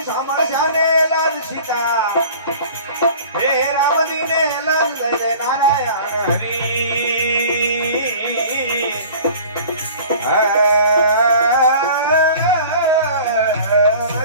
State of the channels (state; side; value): inverted; both; correlation -0.44